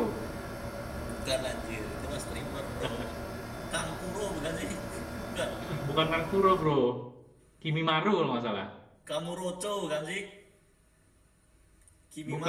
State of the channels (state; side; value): identical; both; correlation 1.00